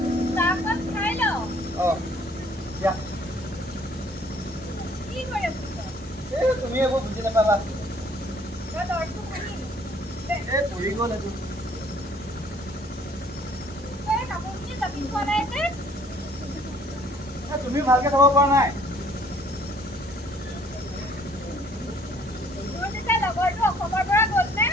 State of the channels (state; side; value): normal; both; correlation 0.59